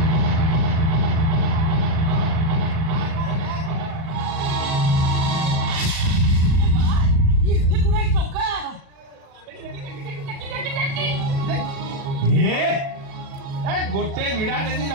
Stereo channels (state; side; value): late; left; 37 ms